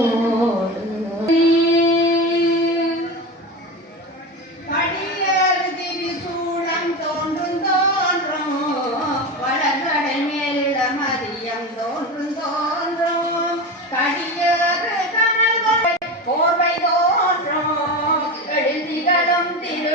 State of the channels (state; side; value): normal; both; correlation 0.24